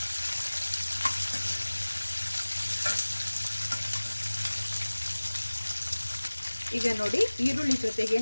ಈಗ ನೋಡಿ, ಈರುಳ್ಳಿ ಜೊತೆಗೆ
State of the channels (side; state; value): both; inverted; correlation -1.00